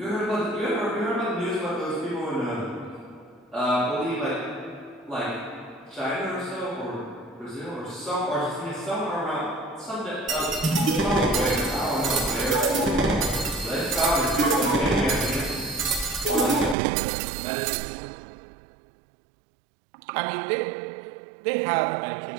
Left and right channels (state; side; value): drops out; left; at 16.8 s